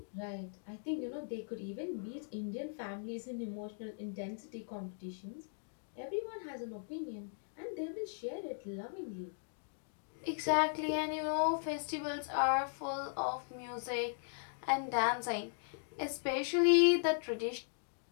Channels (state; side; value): silent; right; digital silence